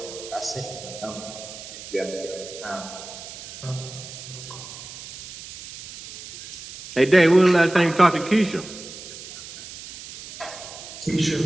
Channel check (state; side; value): noise; right; hiss, 13 dB below the sound